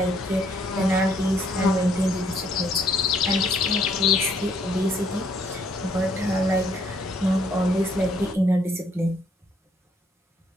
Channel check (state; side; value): normal; both; correlation 0.67